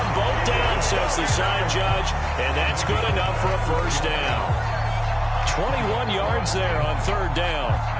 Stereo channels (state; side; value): identical; both; correlation 1.00